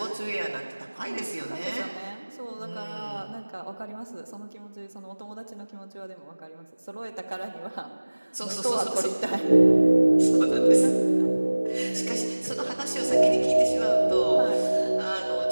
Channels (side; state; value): both; inverted; correlation -1.00